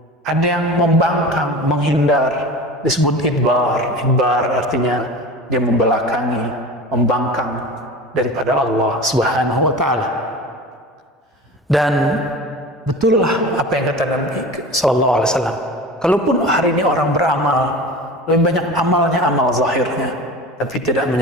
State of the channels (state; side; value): normal; both; correlation 0.34